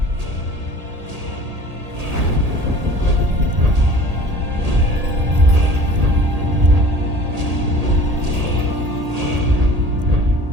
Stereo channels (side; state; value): left; late; 1.8 ms